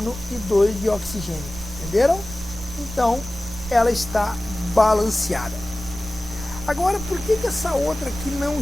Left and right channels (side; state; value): both; normal; correlation 0.97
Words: e 2 de oxigênio. Entenderam? Então, ela está balanceada. Agora, por que que essa outra aqui não